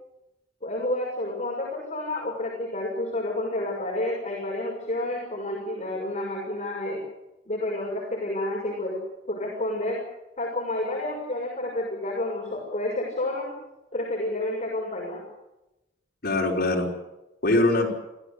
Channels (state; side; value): normal; both; correlation 0.24